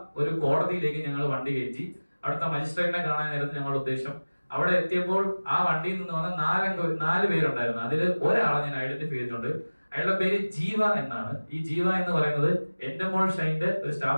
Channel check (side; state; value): both; inverted; correlation -1.00